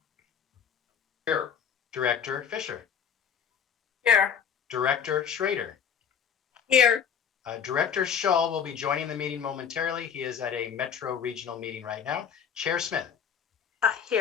Here. Director Fisher. Here. Director Schrader. Here. Director Shull will be joining the meeting momentarily. He is at a Metro Regional meeting right now. Chair Smith.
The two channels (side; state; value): right; quieter; 7.7 dB